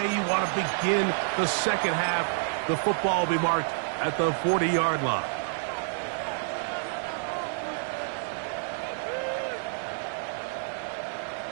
you want to begin the second half. The football will be marked at the 40-yard line.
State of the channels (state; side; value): silent; left; 57 dB below the other